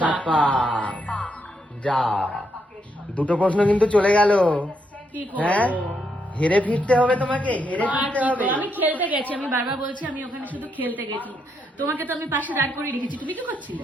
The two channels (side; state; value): both; normal; correlation 0.78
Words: পা যা, দুটো প্রশ্ন কিন্তু চলে গেল। কি হ্যাঁ করব? হেরে ফিরতে হবে তোমাকে, হেরে ফিরতে হবে। আমি খেলতে গেছি, আমি বারবার বলছি আমি ওখানে শুধু খেলতে গেছি। তোমাকে তো আমি পাশে দাঁড় করে রেখেছি, তুমি কি করছিলে?